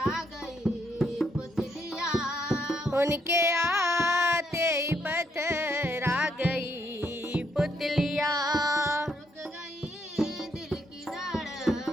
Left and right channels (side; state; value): both; normal; correlation 0.74